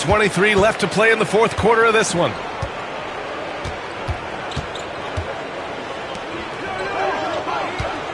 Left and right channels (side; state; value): both; identical; correlation 1.00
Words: left to play in the fourth quarter of this one.